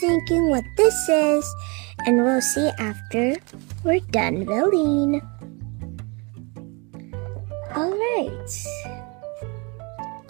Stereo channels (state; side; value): quieter; left; 30.5 dB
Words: what this is, and we'll see after we're done building. Alright.